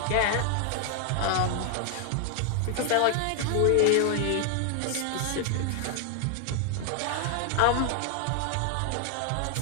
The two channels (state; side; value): different; both; correlation 0.00